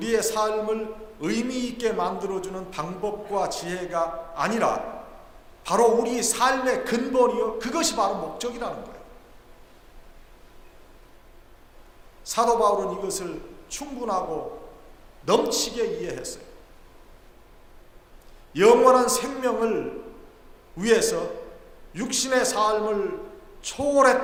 삶을 의미 있게 만들어주는 방법과 지혜가 아니라 바로 우리 삶의 근본이요, 그것이 바로 목적이라는 거예요. 사도 바울은 이것을 충분하고 넘치게 이해했어요. 영원한 생명을 위해서 육신의 삶을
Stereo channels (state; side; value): identical; both; correlation 1.00